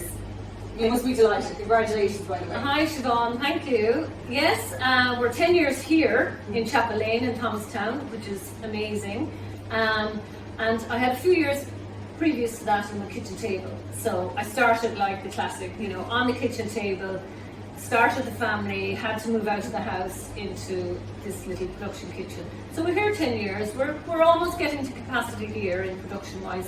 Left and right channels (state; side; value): identical; both; correlation 1.00